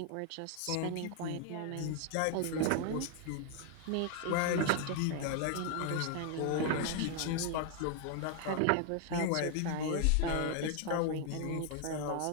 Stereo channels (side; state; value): both; different; correlation 0.00